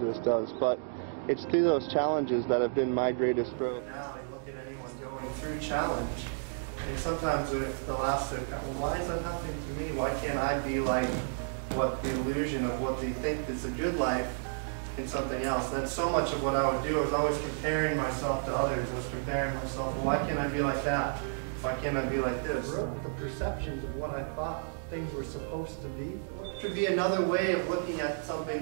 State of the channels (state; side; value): silent; left; digital silence